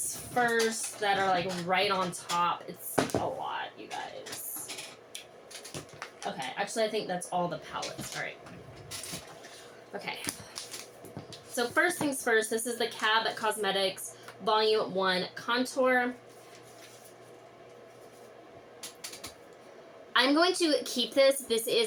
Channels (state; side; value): identical; both; correlation 1.00